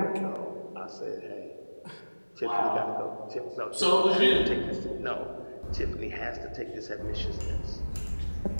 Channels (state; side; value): inverted; both; correlation -1.00